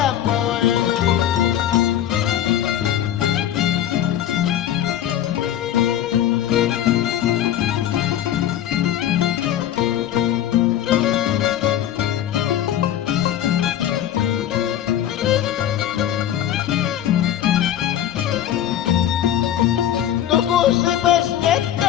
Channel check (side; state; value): right; quieter; 11.3 dB